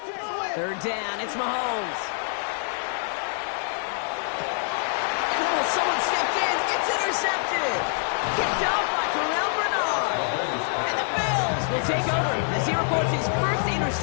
Third down, it's Mahomes. Oh, someone stepped in. It's intercepted. Kicked off by Terrell Bernard. And the Bills will take over as he records his 1st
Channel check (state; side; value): silent; right; 59 dB below the other